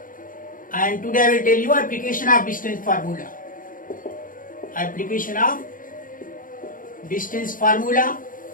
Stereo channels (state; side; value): late; right; 0.40 ms